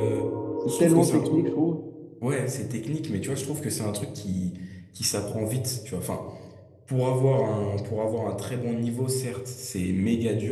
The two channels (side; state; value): both; identical; correlation 1.00